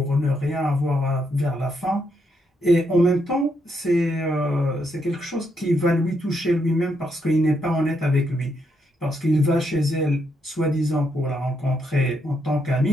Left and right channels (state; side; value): normal; both; correlation 0.77